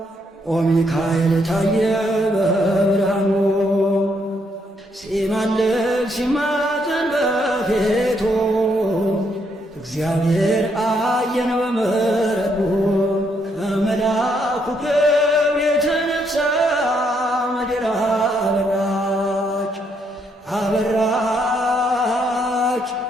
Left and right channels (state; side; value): normal; both; correlation 0.74